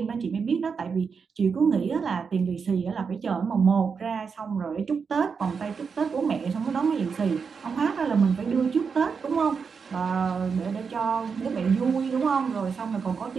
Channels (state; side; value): quieter; left; 5.7 dB